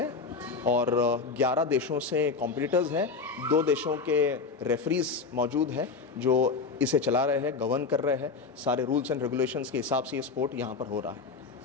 और 11 देशों से कॉम्पिटिटर्स हैं। 2 देशों के रेफरीज मौजूद हैं जो इसे चला रहे हैं, गवर्न कर रहे हैं। सारे रूल्स एंड रेगुलेशंस के हिसाब से ये स्पोर्ट यहाँ पर हो रहा है।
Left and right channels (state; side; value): quieter; right; 4.6 dB